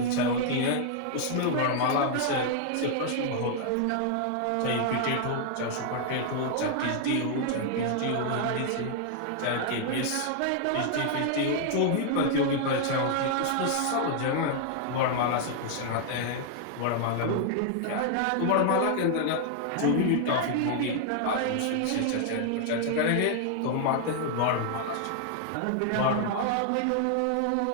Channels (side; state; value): both; different; correlation 0.00